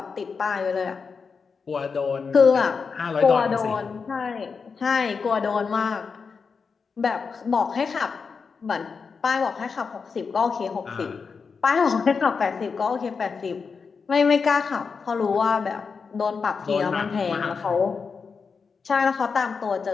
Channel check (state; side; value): quieter; right; 5.3 dB